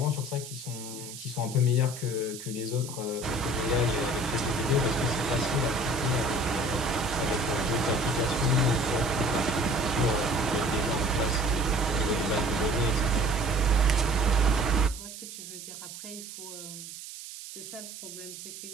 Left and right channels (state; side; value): noise; right; hiss, 12 dB below the sound